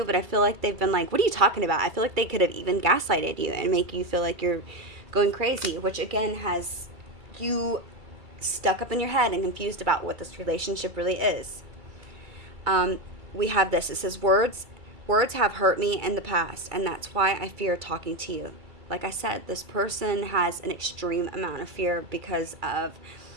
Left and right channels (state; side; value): late; left; 2.3 ms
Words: but I feel like they've been like, what are you talking about? I feel like they could have even gaslighted you and make you feel like you're going crazy, which again has you stuck up in your head and confused about what this relationship really is. We have this. It says, words have hurt me in the past, and that's why I fear talking to you. Like I said, this person has an extreme amount of fear because of